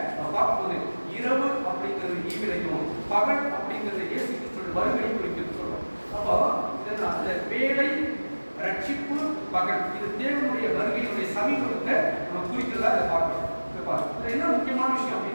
பார்க்கும்போது இரவு அப்படிங்கிறது ஈவிலையும், பகல் அப்படிங்கிறது இயேசு கிறிஸ்துவின் வருகையை குறிக்கிறது சொல்றோம். அப்போ இதனால் இந்த வேலை, ரட்சிப்பு, பகல் இது தேவனுடைய வருகையினுடைய சமீபத்தை நம்ம குறிக்கிறதா இதை பார்க்கிறோம். இதுல என்ன முக்கியமான விஷயம்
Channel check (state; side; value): inverted; both; correlation -1.00